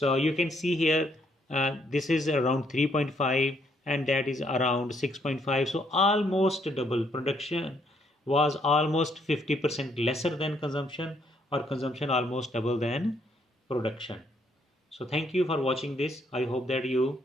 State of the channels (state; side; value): normal; both; correlation 0.71